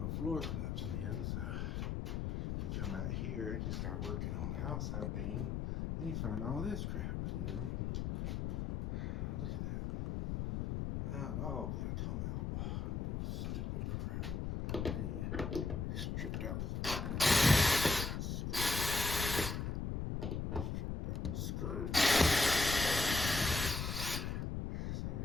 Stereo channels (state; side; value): noise; left; rumble, 2 dB below the sound